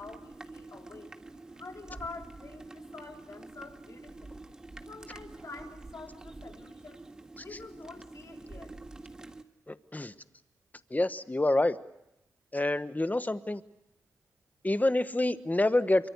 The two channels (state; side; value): normal; both; correlation 0.94